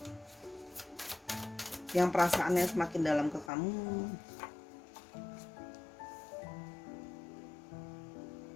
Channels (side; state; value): right; drops out; at 3.5 s